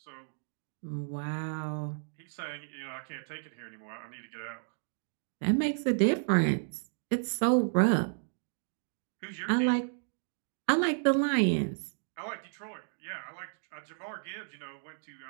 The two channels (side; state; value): left; silent; digital silence